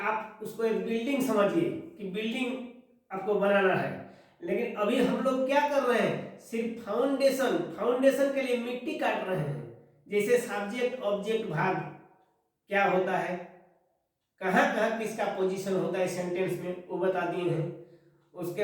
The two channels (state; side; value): identical; both; correlation 1.00